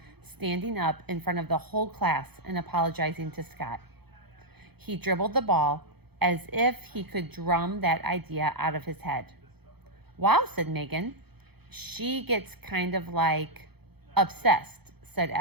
standing up in front of the whole class and apologizing to Scott. He dribbled the ball as if he could drum that idea out of his head. "Wow," said Megan. "She gets kind of like obsessed," said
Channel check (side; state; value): left; late; 0.97 ms